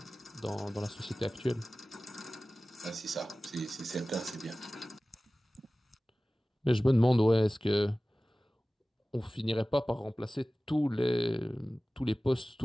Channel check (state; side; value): normal; both; correlation 0.97